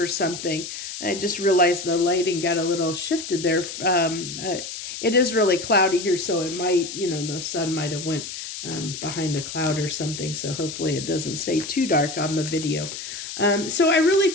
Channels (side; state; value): left; noise; hiss, 8 dB below the sound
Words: something. I just realized the lighting got a little shifted there. It is really cloudy here, so it might, you know, the sun might have went behind a cloud or something. So hopefully it doesn't stay too dark on the video. So I really